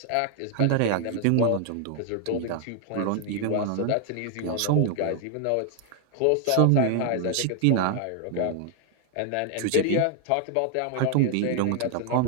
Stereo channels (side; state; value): both; different; correlation 0.00